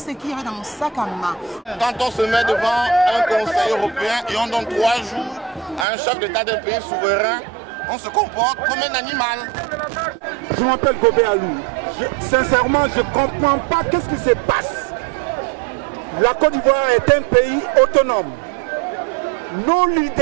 qu'il y avait dans mon sac à main. Quand on se met devant un conseil européen et on donne 3 jours à un chef d'État d'un pays souverain, on se comporte comme un animal. Je m'appelle Gobé Alou. Sincèrement, je ne comprends pas qu'est-ce qui se passe. La Côte d'Ivoire est un pays autonome. Nos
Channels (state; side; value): drops out; left; at 5.9 s